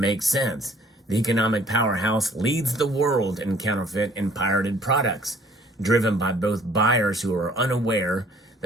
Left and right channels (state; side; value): normal; both; correlation 0.57